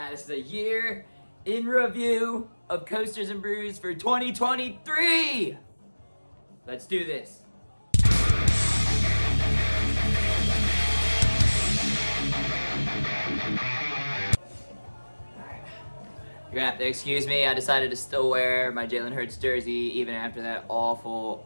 this is a year in review of Coasters and Brews for 2023! Let's do this. You're gonna have to excuse me, I decided to still wear my Jalen Hurts jersey even after that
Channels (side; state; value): both; inverted; correlation -1.00